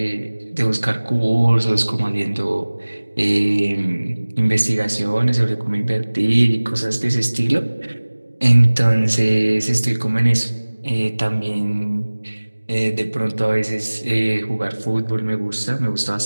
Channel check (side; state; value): both; inverted; correlation -1.00